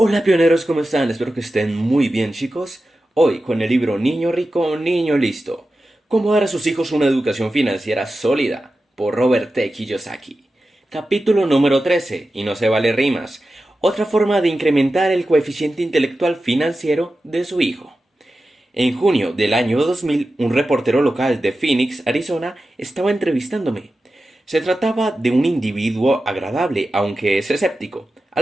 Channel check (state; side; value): normal; both; correlation 0.93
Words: pioneros, ¿cómo están? Espero que estén muy bien, chicos. Hoy con el libro Niño Rico, Niño Listo. Cómo dar a sus hijos una educación financiera sólida, por Robert T. Kiyosaki. Capítulo número 13, y no se vale rimas. Otra forma de incrementar el coeficiente intelectual financiero de su hijo. En junio del año 2000, un reportero local de Phoenix, Arizona, estaba entrevistándome. Se trataba de un individuo agradable, aunque es escéptico,